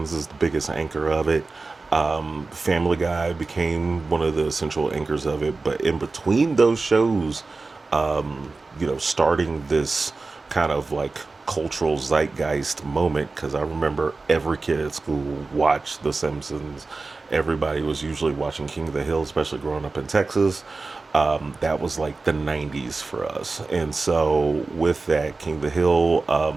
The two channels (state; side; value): quieter; left; 3.8 dB